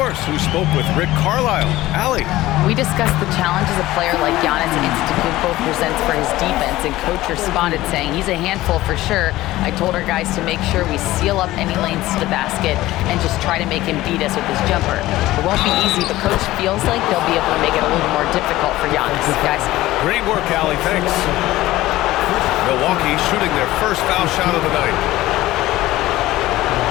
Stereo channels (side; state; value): right; quieter; 16.7 dB